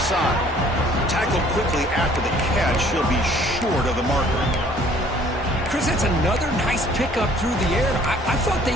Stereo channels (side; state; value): both; normal; correlation 0.57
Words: Tackled quickly after the catch. He'll be short of the marker. Chris, that's another nice pickup through the air. I thought they